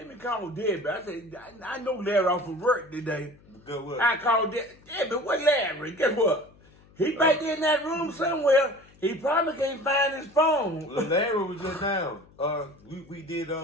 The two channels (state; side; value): noise; left; hum, 27 dB below the sound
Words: me call Debbie. I said, I know Larry off from work today. Good work. I called Debbie. What Larry? Guess what? He back in that room somewhere. He probably can't find his phone. Larry was just down. We did